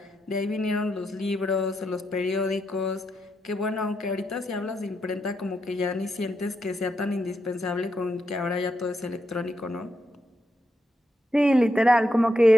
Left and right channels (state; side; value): normal; both; correlation 0.83